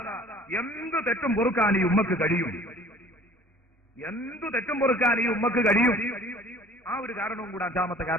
എന്ത് തെറ്റും പൊറുക്കാൻ ഈ ഉമ്മക്ക് കഴിയും. എന്തു തെറ്റും പൊറുക്കാൻ ഈ ഉമ്മക്ക് കഴിയും. ആ ഒരു കാരണവും കൂടെ അഞ്ചാമത്തെ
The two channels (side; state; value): both; normal; correlation 0.50